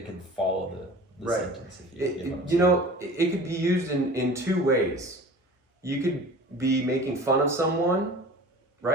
could follow the Right. sentence. If you, get what I'm You know, it could be used in two ways. You could be making fun of someone,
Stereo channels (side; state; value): both; normal; correlation 0.41